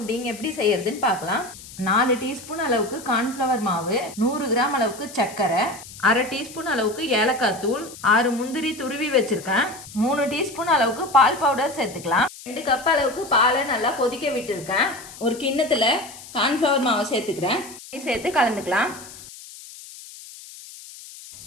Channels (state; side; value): noise; left; hiss, 16 dB below the sound